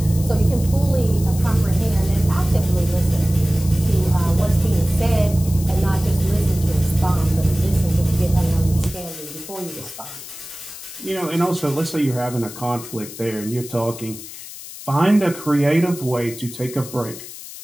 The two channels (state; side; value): noise; left; hiss, 13 dB below the sound